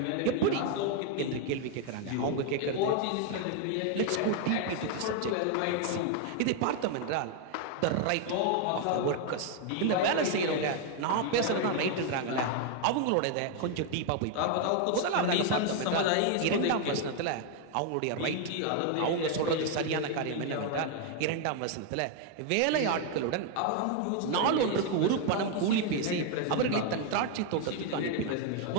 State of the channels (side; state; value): both; different; correlation 0.00